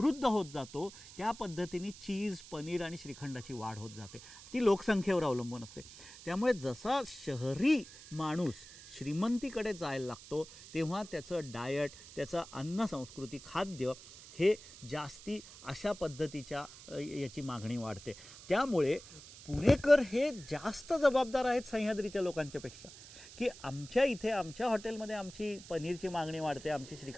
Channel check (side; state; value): right; noise; hiss, 17 dB below the sound